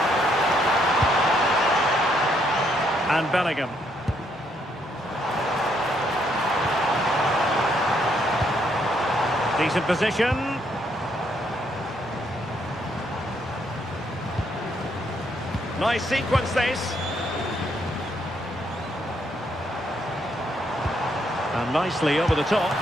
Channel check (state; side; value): normal; both; correlation 0.73